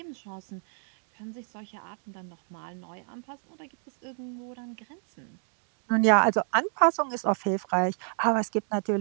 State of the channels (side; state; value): left; silent; 58 dB below the other